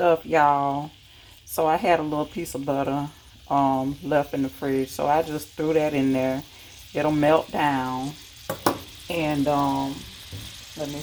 y'all. So I had a little piece of butter left in the fridge, so I just threw that in there. It'll melt down. And let me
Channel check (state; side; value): identical; both; correlation 1.00